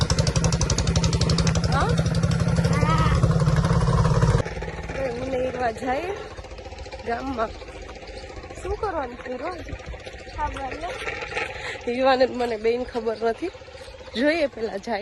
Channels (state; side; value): identical; both; correlation 1.00